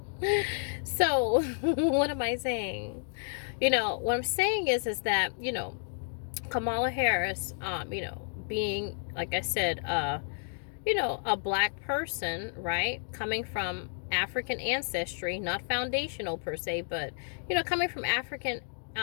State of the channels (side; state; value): right; silent; digital silence